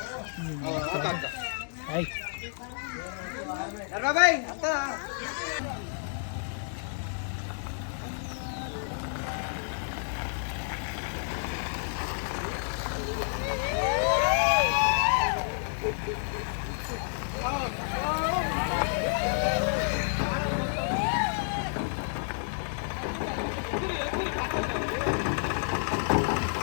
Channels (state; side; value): silent; right; digital silence